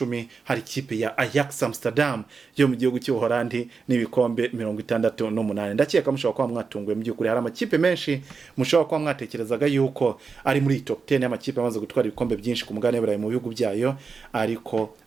hari ikipe ya Ajax Amsterdam yo mu gihugu cy'Ubuholandi n'ibikombe 68. Ndakeka mushobora kuba mwatunguye mu by'ukuri, hari amakipe menshi mushobora kuba mwatekerezaga yuko ari muri top 10 y'amakipe amaze gutwara ibikombe byinshi ku mugabane w'Uburayi mu bihugu byayo, ariko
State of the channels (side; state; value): left; quieter; 5.0 dB